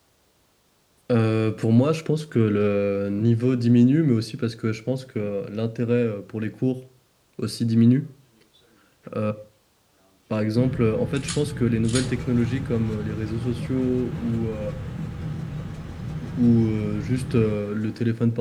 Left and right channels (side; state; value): both; identical; correlation 1.00